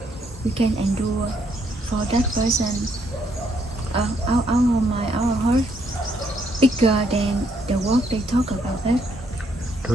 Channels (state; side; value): normal; both; correlation 0.72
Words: We can endure for that person. Our mind, our heart bigger than the work they talk about that. တိ